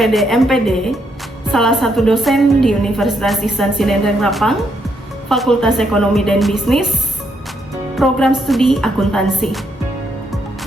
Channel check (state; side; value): normal; both; correlation 0.76